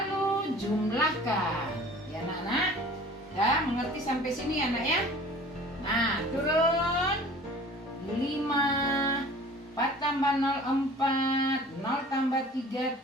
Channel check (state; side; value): normal; both; correlation 0.46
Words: jumlahkan ya anak-anak. Udah mengerti sampai sini ya anak ya. Nah turun 5, 4 tambah 0 4, 0 tambah 3